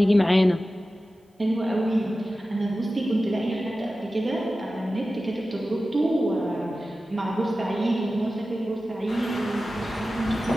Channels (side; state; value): both; normal; correlation 0.94